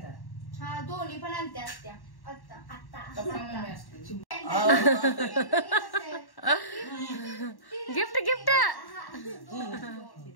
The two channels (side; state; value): right; late; 1.1 ms